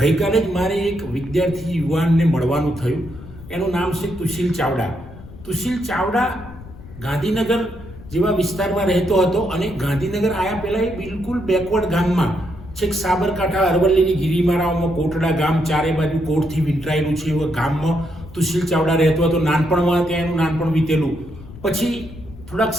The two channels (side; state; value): left; noise; rumble, 16 dB below the sound